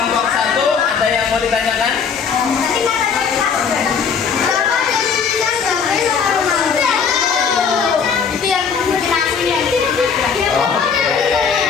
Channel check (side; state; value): right; quieter; 6.3 dB